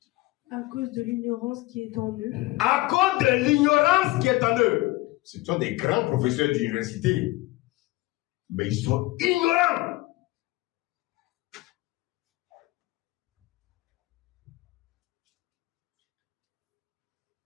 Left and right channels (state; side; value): quieter; right; 19.9 dB